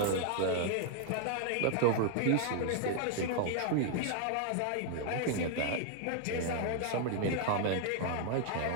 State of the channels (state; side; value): different; both; correlation 0.00